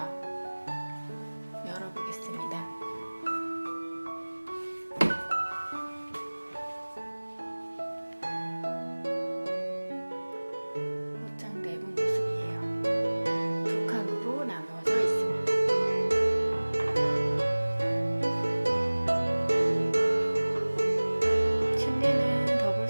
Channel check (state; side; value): inverted; both; correlation -1.00